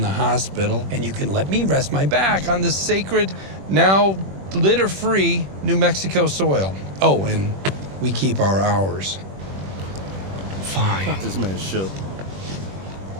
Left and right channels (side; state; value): left; late; 21 ms